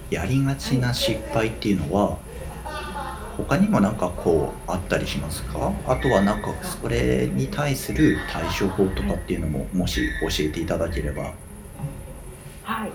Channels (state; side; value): identical; both; correlation 1.00